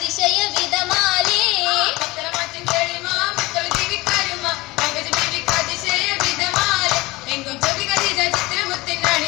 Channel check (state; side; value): quieter; right; 21.2 dB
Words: വിധമാലേ പത്തരമാറ്റിൻ തെളിമാ മുത്തുറ ബീവി കരുമാ പങ്കജ ബീവി കതിശയ വിധമാലേ എങ്കും ജബി കദിജ ചിത്രമുത്തിൻ